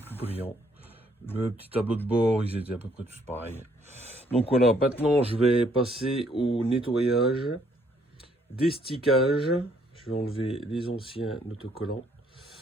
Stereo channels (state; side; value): normal; both; correlation 0.67